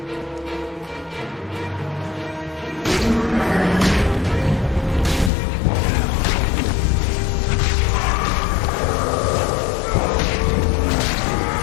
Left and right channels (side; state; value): right; drops out; at 5.3 s